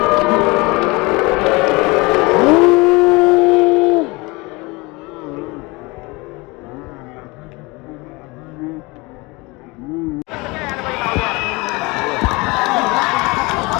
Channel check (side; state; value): right; quieter; 25.0 dB